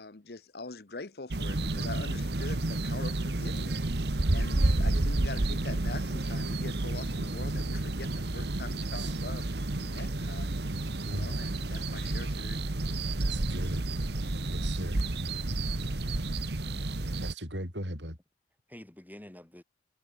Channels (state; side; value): normal; both; correlation 0.81